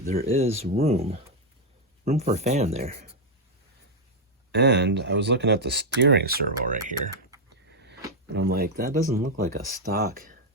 there is room for a fan there. And I was looking at the steering servo right here, and I'm like, that doesn't look like a stock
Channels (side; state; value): both; normal; correlation 0.00